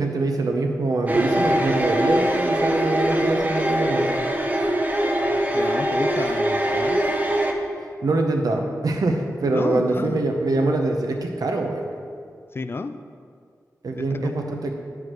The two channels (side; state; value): both; normal; correlation 0.87